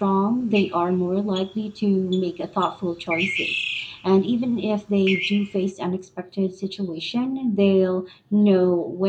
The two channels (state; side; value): identical; both; correlation 1.00